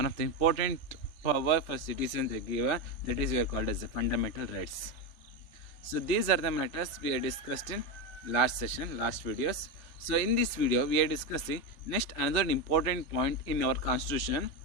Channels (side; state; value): right; late; 3.4 ms